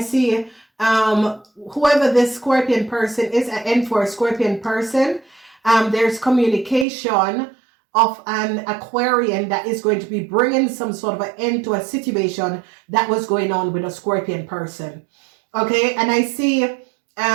whoever this Scorpion person is, an end for a Scorpion person. There's communication of an Aquarian that is going to be bringing some sort of an end to a situation that was going on with a Scorpion person. Okay, and I see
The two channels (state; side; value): drops out; left; at 6.9 s